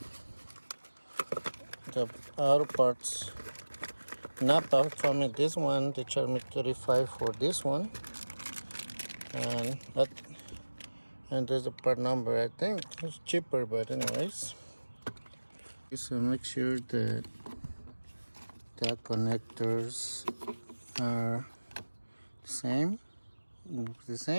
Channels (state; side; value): inverted; both; correlation -1.00